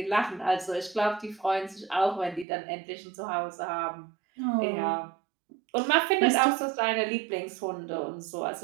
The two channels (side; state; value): left; drops out; at 2.5 s